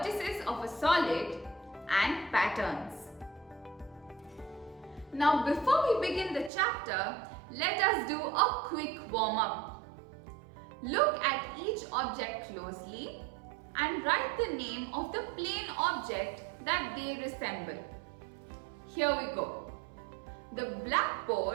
of a solid, and patterns. Now before we begin the chapter, let us do a quick warm-up. Look at each object closely and write the name of the plane object that they resemble. Here we go. The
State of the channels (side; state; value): left; drops out; at 6.5 s